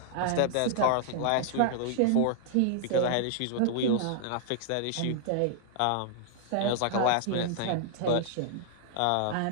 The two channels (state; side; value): different; both; correlation -0.01